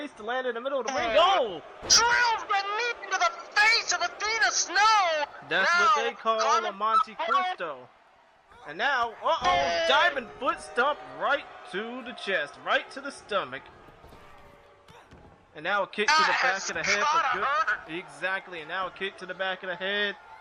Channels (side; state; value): both; identical; correlation 1.00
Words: to land in the middle of the ring. Oh! Drills the knee into the face of Athena Snow. That's now, what they call a Monte Cristo. And now, diving foot stomp right to the chest, right to the stomach. And now a kick to the back of the head for good. Exactly, and now a kick to the back of the head